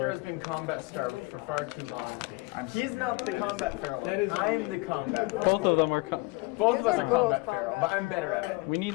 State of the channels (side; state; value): right; quieter; 25.7 dB